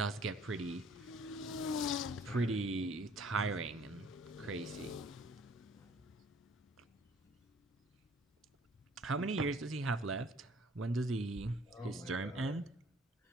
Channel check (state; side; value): normal; both; correlation 0.56